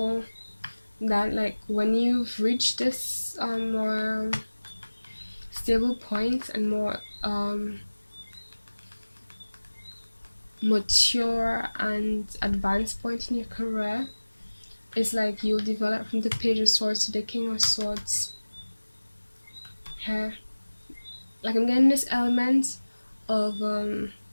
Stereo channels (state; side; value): inverted; both; correlation -1.00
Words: that like when you've reached this more stable point and more mature and advanced point in your career, it's like you'll develop from the Page of Swords to the King of Swords here. Like I'm getting this element of